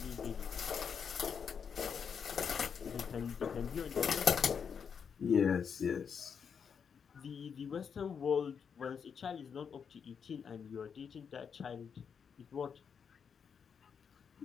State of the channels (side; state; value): right; quieter; 6.8 dB